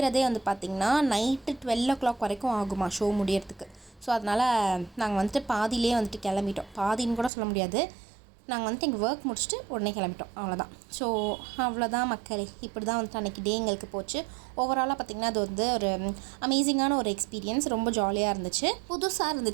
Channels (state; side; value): drops out; left; at 7.3 s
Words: வந்து பார்த்திங்கன்னா நைட்டு 12 o'clock வரைக்கும் ஆகுமா ஷோ முடியறதுக்கு. ஸோ அதனால் நாங்கள் வந்துட்டு பாதியிலே வந்துட்டு கிளம்பிட்டோம். பாதின்னு கூட சொல்ல முடியாது, நாங்கள் வந்துட்டு எங்கள் ஒர்க் முடிச்சுட்டு உடனே கிளம்பிட்டோம். அவ்வளோதான். ஸோ அவ்வளோதான் மக்களே. இப்படி தான் வந்துட்டு அன்றைக்கி டே எங்களுக்கு போச்சு. ஓவராலாக பார்த்திங்கன்னா அது வந்து ஒரு அமேசிங்கான ஒரு எக்ஸ்பீரியன்ஸ். ரொம்ப ஜாலியாக இருந்துச்சு, புதுசாக